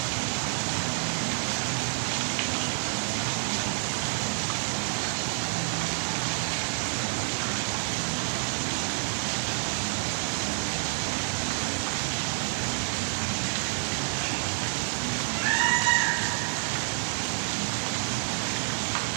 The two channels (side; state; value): left; silent; digital silence